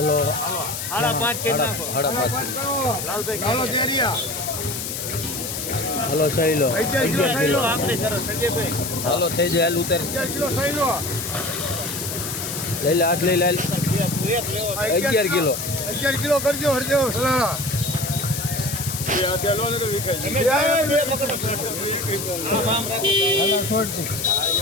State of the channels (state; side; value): noise; left; hiss, 5 dB below the sound